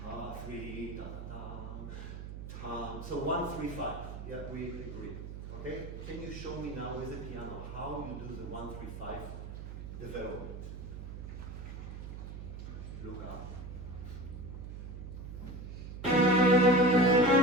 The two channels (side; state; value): right; noise; hum, 9 dB below the sound